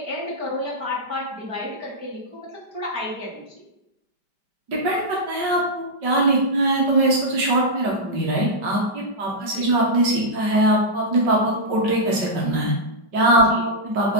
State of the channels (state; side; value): late; left; 5.1 ms